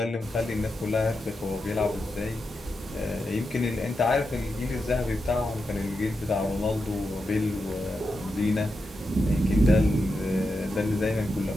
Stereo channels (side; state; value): both; normal; correlation 0.87